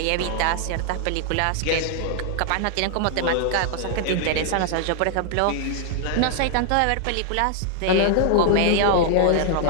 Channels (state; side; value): different; both; correlation 0.00